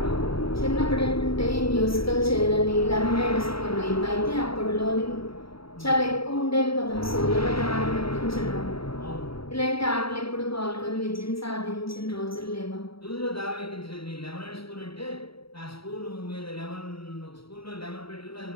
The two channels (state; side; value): late; right; 0.75 ms